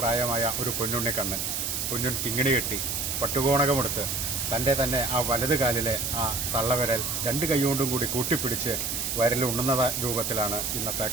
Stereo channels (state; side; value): noise; right; hiss, 1 dB below the sound